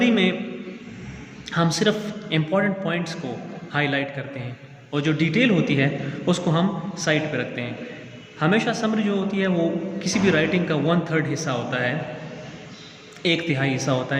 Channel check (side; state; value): both; identical; correlation 1.00